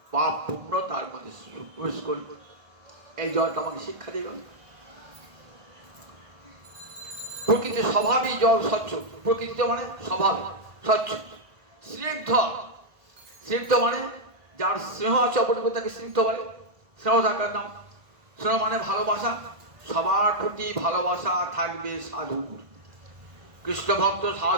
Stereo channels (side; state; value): left; late; 1.5 ms